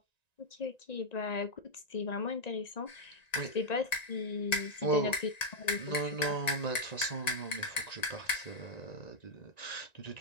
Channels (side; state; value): right; late; 1.9 ms